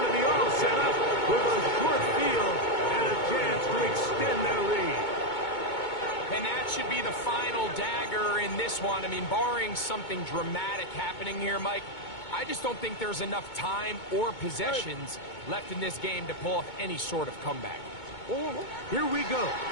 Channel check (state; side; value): late; right; 2.2 ms